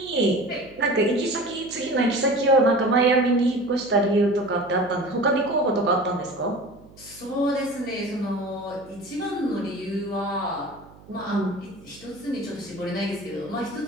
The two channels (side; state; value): right; noise; hum, 23 dB below the sound